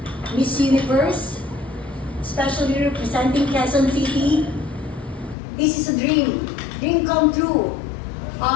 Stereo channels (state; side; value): drops out; right; at 5.4 s